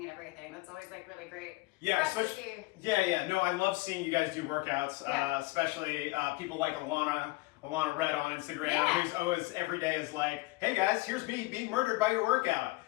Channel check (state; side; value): quieter; right; 22.2 dB